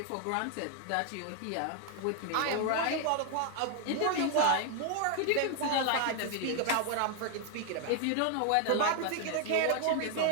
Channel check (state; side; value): different; both; correlation 0.00